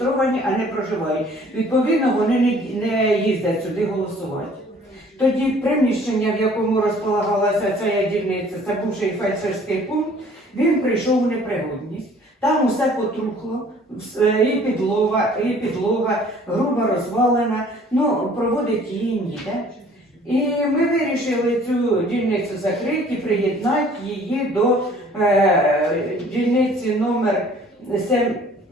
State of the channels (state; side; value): normal; both; correlation 0.54